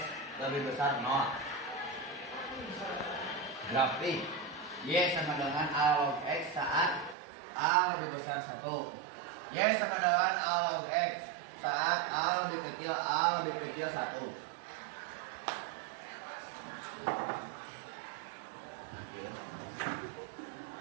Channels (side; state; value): left; drops out; at 7.2 s